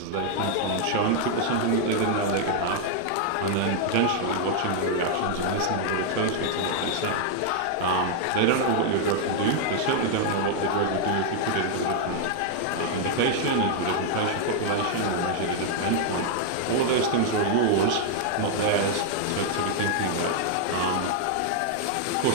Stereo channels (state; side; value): different; both; correlation 0.00